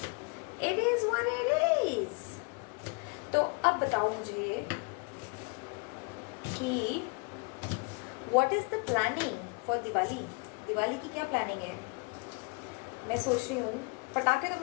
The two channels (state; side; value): quieter; right; 33.0 dB